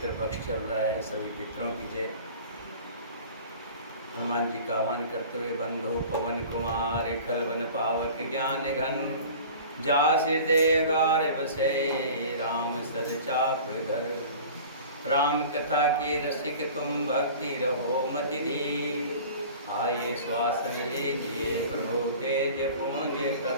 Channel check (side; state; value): both; inverted; correlation -0.41